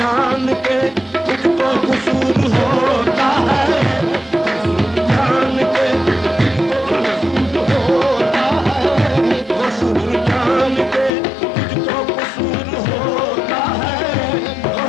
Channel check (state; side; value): drops out; right; at 11.1 s